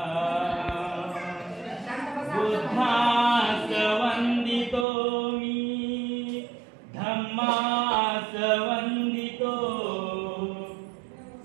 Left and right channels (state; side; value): drops out; left; at 4.9 s